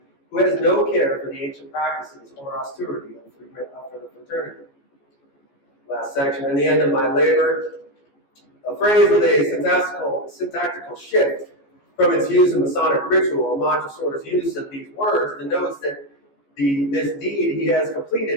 who has no care for the ancient practices or austerity of the fraternity. Last section, in the end of my labor, a phrase with a syntactical shift from its use in Masonic ritual. Montresor's use of these words denotes that this deed he has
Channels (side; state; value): right; late; 14 ms